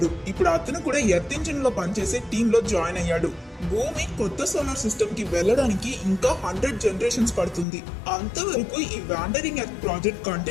ఇప్పుడు అతను కూడా ఎర్త్ ఇంజిన్ లో పనిచేసే టీమ్ లో జాయిన్ అయ్యాడు. భూమి కొత్త సోలార్ సిస్టమ్ కి వెళ్ళడానికి ఇంకా 100 జనరేషన్స్ పడుతుంది. అంతవరకు ఈ వాండరింగ్ ఎర్త్ ప్రాజెక్ట్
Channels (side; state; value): right; drops out; at 7.7 s